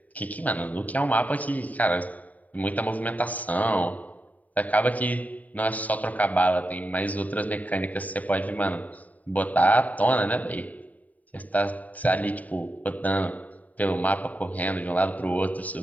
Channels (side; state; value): right; late; 0.073 ms